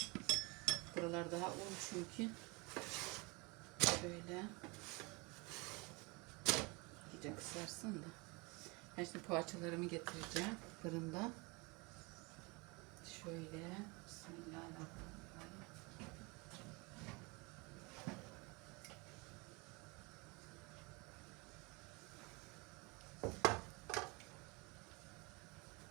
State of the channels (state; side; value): quieter; left; 27.5 dB